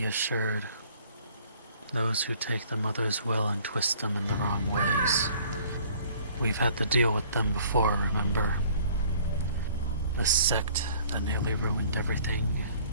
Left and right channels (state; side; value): inverted; both; correlation -0.56